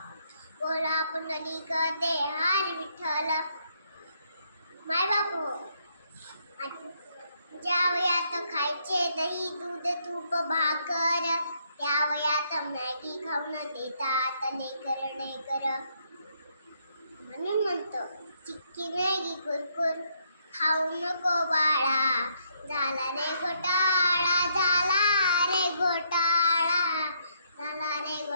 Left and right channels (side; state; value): both; inverted; correlation -0.73